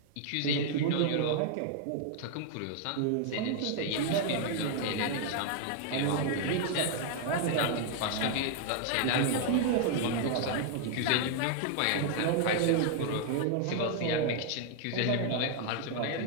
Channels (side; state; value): both; different; correlation 0.00